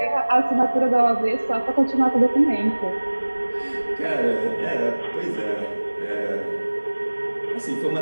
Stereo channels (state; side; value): inverted; both; correlation -1.00